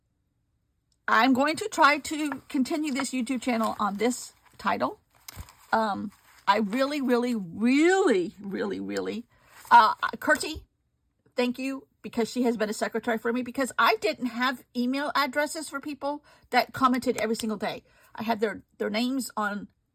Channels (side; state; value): both; identical; correlation 1.00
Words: I'm going to try to continue this YouTube channel on this title. I really, really, really, really, really Kurti, thank you, because she has been a secretary for me, because I didn't have email addresses for people that commented every single day. I had their names on